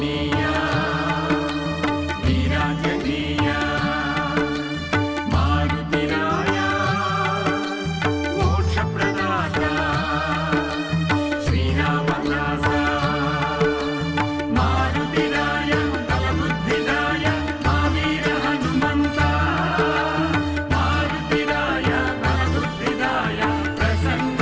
వీరాంజనేయ మారుతిరాయ మోక్షప్రదాత శ్రీరామదాస మారుతిరాయ బలబుద్ధిదాయ మావీర హనుమంత మారుతిరాయ బలబుద్ధిదాయ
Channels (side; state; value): both; identical; correlation 1.00